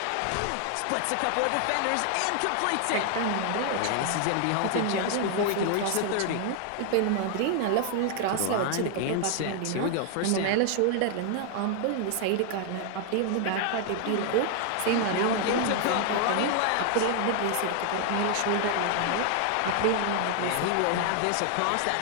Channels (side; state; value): both; different; correlation 0.00